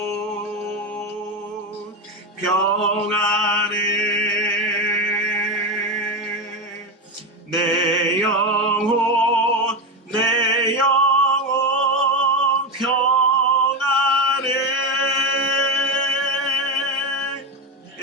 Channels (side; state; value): both; normal; correlation 0.14